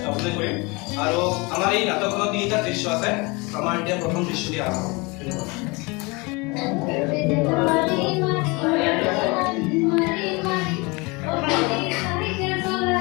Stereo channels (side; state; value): right; quieter; 26.9 dB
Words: কৰিম। আৰু আমাৰ এই নাটকখনত 3টা দৃশ্য আছে। আমাৰ এতিয়া প্ৰথম দৃশ্য দিয়া হ'ব।